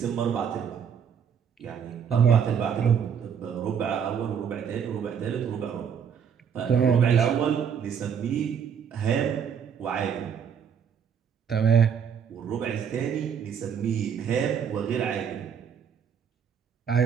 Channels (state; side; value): quieter; left; 7.5 dB